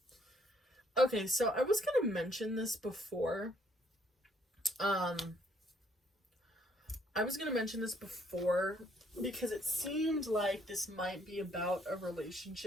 Okay, so I was gonna mention this before. Because it seemed like this might be about a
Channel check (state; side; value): normal; both; correlation 0.66